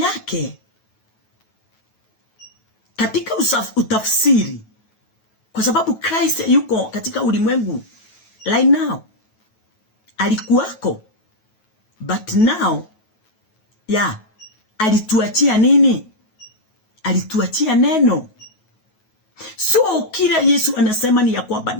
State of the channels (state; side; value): late; right; 9.3 ms